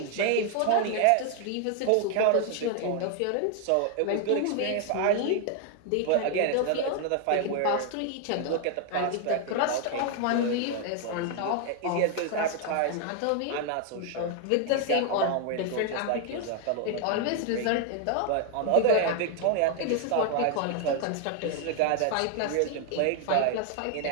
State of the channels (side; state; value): both; different; correlation 0.00